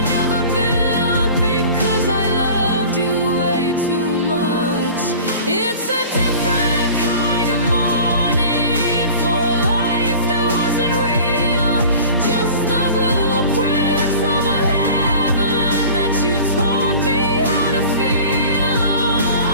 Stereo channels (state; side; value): inverted; both; correlation -0.42